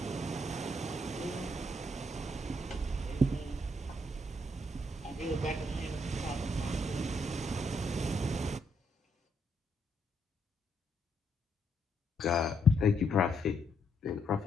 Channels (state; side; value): normal; both; correlation 0.75